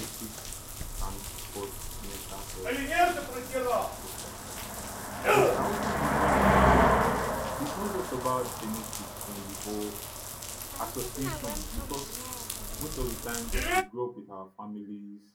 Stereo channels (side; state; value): both; identical; correlation 1.00